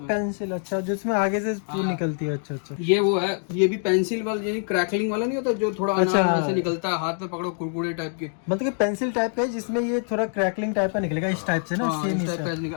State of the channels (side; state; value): right; silent; 55 dB below the other